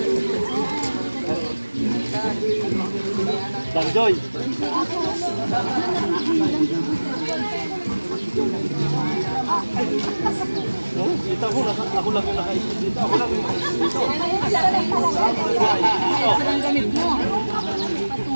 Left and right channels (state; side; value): inverted; both; correlation -1.00